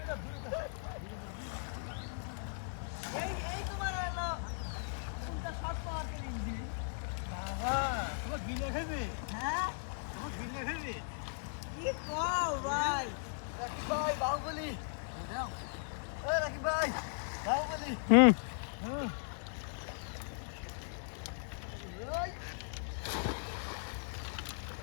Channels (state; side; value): silent; right; 53 dB below the other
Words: এই তোমার হলো কোনটা শর্ট পাওয়ার ইঞ্জিন? তোমার গিলে খাইবে হ্যাঁ তোমার গিলে খাইবে কি কও ভাই? রাকিব ভাই বাহুবলি। ওই রাকিব ভাই বাহুবলি। হুম ওই